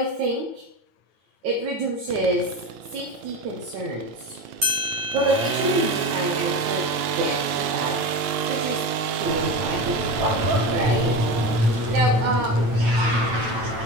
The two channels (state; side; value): late; left; 8.8 ms